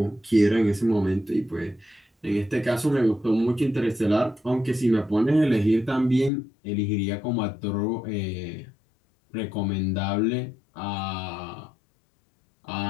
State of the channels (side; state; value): right; drops out; at 6.3 s